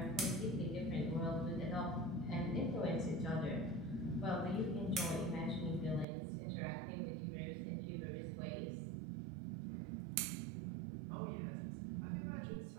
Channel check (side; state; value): left; drops out; at 6.1 s